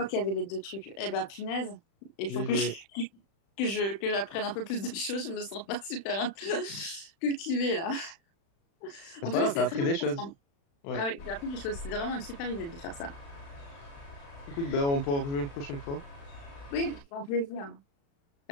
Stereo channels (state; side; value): late; right; 36 ms